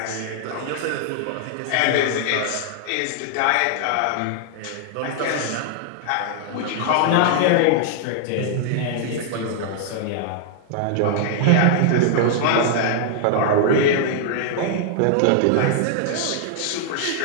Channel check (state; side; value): different; both; correlation -0.01